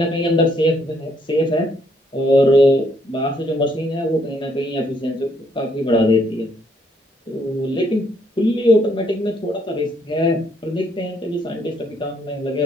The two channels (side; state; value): both; normal; correlation 0.70